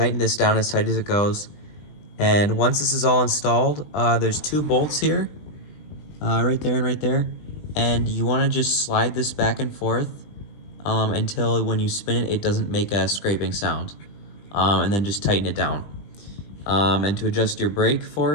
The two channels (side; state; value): right; late; 20 ms